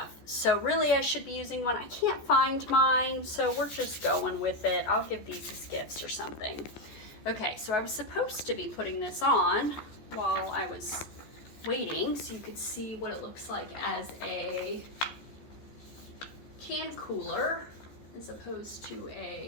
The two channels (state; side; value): late; right; 14 ms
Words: So really I should be using one. I can't find mine, so we're just going with it. I'll give these as gifts or something. Okay, so I was supposed to be putting this on while I was waiting so you could see what it looks like as a can cooler as opposed to